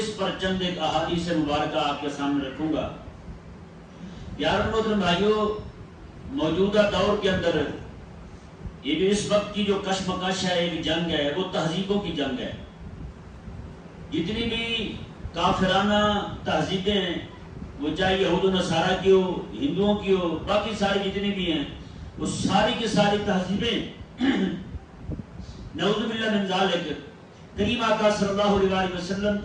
پر چند ایک احادیث مبارکہ آپ کے سامنے رکھوں گا۔ یارو محترم بھائیو، موجودہ دور کے اندر یہ جو اس وقت کی جو کشمکش ہے، ایک جنگ ہے، وہ تہذیبوں کی جنگ ہے۔ جتنی بھی کافرانہ تہذیبیں ہیں، وہ چاہے یہود و نصارہ کی ہو، ہندوؤں کی ہو، باقی ساری جتنی بھی ہیں، وہ ساری کی ساری تہذیبیں نعوذ باللہ من ذالک، کریم آقا صلی اللہ علیہ وسلم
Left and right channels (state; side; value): identical; both; correlation 1.00